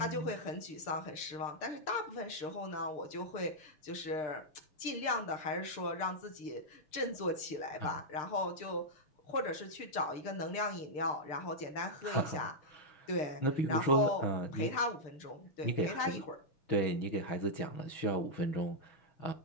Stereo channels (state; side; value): late; right; 6.7 ms